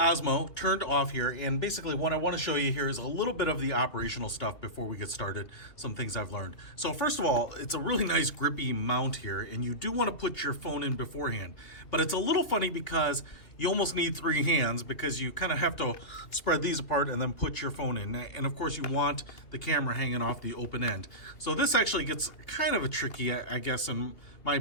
turned off here, and basically what I want to show you here is a little bit of the operational stuff before we get started, some things I've learned. So first of all, it's a really nice grippy mount here, and you do want to put your phone in beforehand, but it's a little funny because you almost need three hands because you kind of have to spread these apart and then put your phone in. And of course you want the camera hanging off the open end. So this actually gets kind of a tricky, I guess, in my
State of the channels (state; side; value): late; right; 2.5 ms